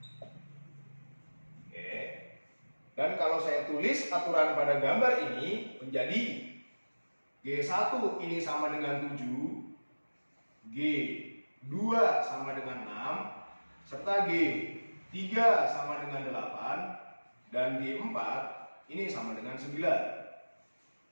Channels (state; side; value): inverted; both; correlation -1.00